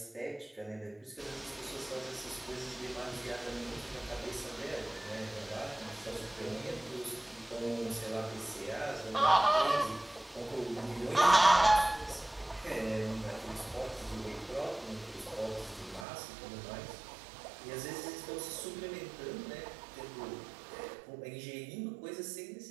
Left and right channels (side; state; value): left; drops out; at 16.1 s